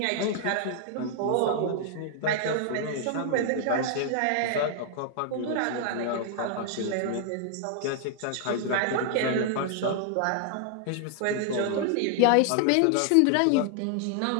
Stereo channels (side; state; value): both; different; correlation 0.00